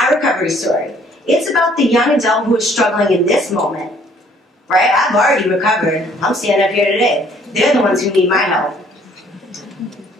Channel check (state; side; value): normal; both; correlation 0.60